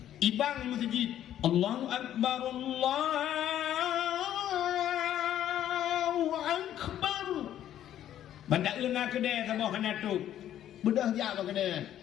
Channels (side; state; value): right; quieter; 11.4 dB